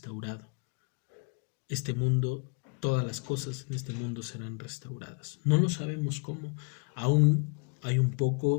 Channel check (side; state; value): right; quieter; 35.2 dB